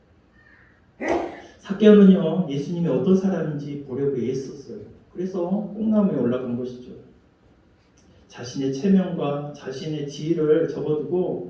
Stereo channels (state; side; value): identical; both; correlation 1.00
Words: 삭개오는요, 예수님이 어떤 사람인지 보려고 애썼어요. 그래서 뽕나무에 올라간 것이죠. 자신의 체면과 자신의 지위를